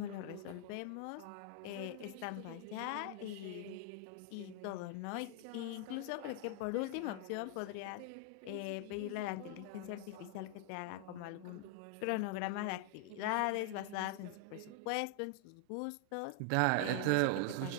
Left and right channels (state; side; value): different; both; correlation 0.00